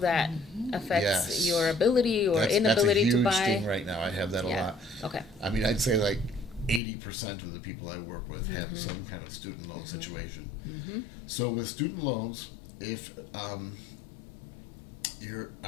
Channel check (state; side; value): drops out; right; at 6.8 s